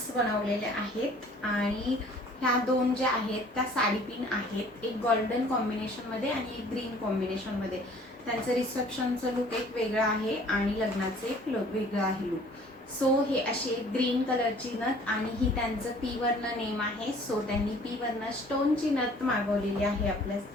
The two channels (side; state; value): both; normal; correlation 0.53